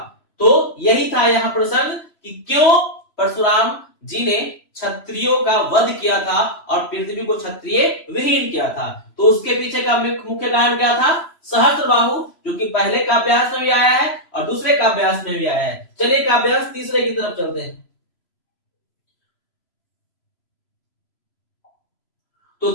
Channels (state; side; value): late; right; 3.0 ms